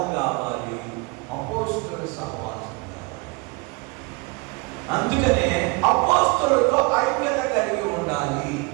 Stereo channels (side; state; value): left; quieter; 27.5 dB